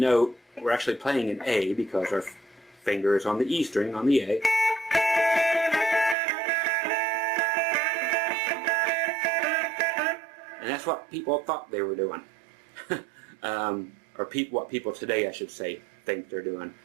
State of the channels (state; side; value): drops out; left; at 6.2 s